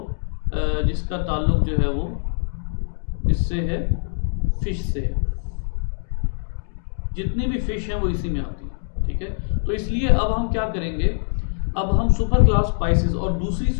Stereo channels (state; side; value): silent; right; digital silence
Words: जिसका ताल्लुक जो है वो इससे है, फिश से है। जितनी भी फिश हैं वो इसी में आती है, ठीक है। तो इसलिए अब हम क्या करेंगे, अब हम सुपर क्लास पाइसेस, और दूसरी